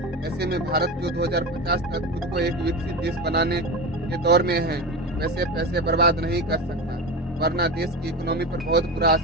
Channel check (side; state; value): both; normal; correlation 0.24